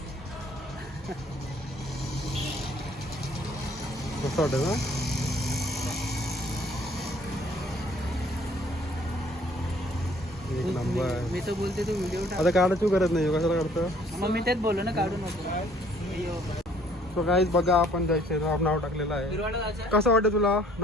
कसं वाटतं ना. एक नंबर. मी तर बोलते तू व्हिडिओ आता काढायची गरज नाही. कशाला काढतं. मग मी तेच बोललो ना काढू नको. सो गाईज बघा आपण जय श्रीराम नाव टाकलेलं आहे. कसं वाटतं तुला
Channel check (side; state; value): both; normal; correlation 0.59